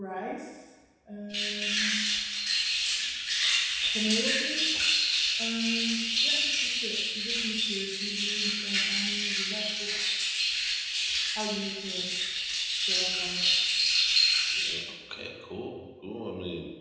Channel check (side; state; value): both; identical; correlation 1.00